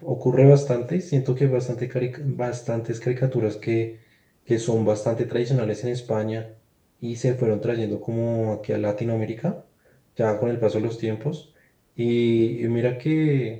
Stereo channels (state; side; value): identical; both; correlation 1.00